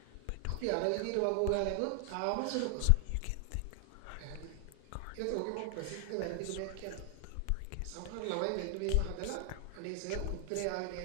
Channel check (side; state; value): both; different; correlation 0.00